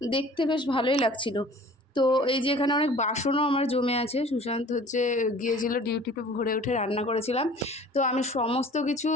দেখতে, বেশ ভালোই লাগছিল। তো এই যে এখানে অনেক বাসনও আমার জমে আছে। সুশান্ত গিয়েছিল ডিউটিতে, ভোরে উঠে রান্না করেছিলাম। তো আমি সমস্ত কিছু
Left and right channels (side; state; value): both; normal; correlation 0.47